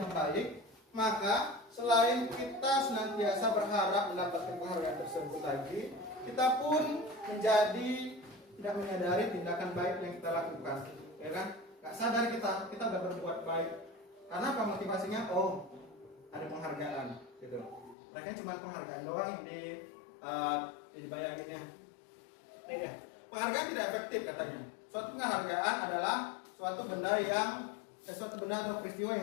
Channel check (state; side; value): drops out; right; at 17.9 s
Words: baik, maka selain kita senantiasa berharap mendapatkan penghargaan tersebut lagi, kita pun menjadi tidak menyadari tindakan baik yang kita lakukan, ya kan? Gak sadar kita udah berbuat baik. Karena apa motivasinya? Oh, ada penghargaan, gitu. Mereka cuma penghargaan doang yang dibayanginnya. Ini ya. Penghargaan tidak efektif katanya. Suatu penghargaan adalah suatu benda atau peristiwa